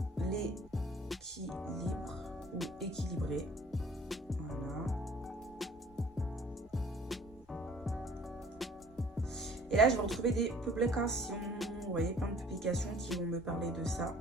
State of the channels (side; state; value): both; normal; correlation 0.53